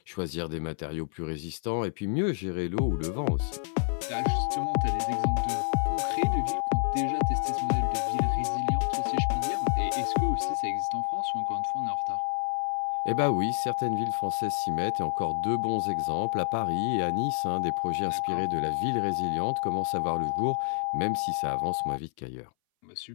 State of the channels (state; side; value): silent; right; 59 dB below the other